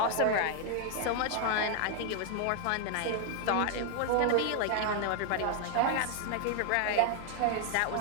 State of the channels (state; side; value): different; both; correlation 0.00